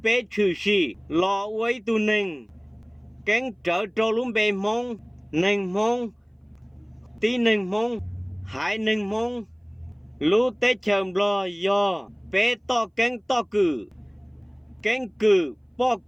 bê trừ sĩ lò uấy tu nình cánh trở trô lúc bê mong nình mong tí nình mong hải nình mong lúc tết chờ lò giờ bê to cánh to cử bỏ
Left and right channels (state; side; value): identical; both; correlation 1.00